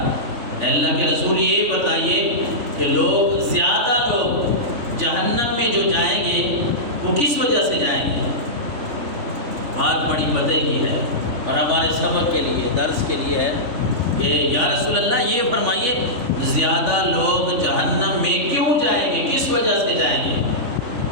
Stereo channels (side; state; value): left; late; 3.4 ms